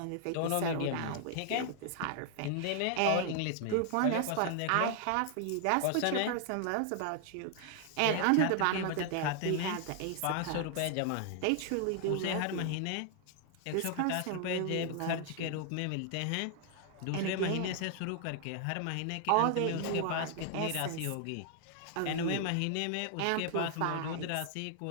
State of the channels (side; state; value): both; different; correlation 0.00